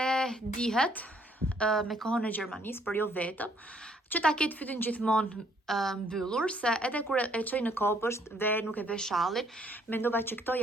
dihet me kohën e Gjermanisë, por jo vetëm, që ta ketë fytyn gjithmonë mbyllur, se edhe kur e çoj në kopësht dhe nuk e ve shallin, mendova që këto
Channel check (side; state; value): both; normal; correlation 0.65